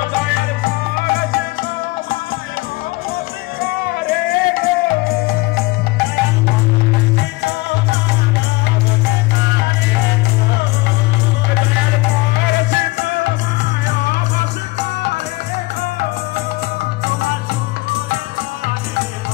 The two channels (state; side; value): quieter; right; 22.2 dB